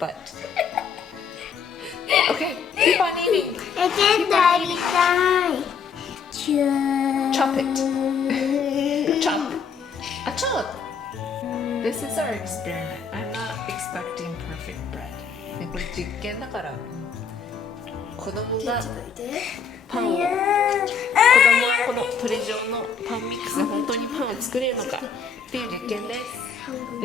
keep on eating. ケントやりたい。Chop it. Chop. Chop. This is our experiment. I'm not expecting perfect bread. ね、これ実験だから、子供がパンを、子供はこのトレジョーのパンミックスで本当にパンを作れるのかっていう実験です。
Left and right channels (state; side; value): quieter; right; 6.2 dB